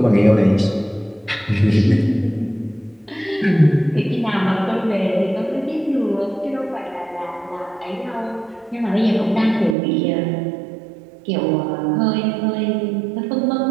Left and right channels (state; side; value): drops out; left; at 9.8 s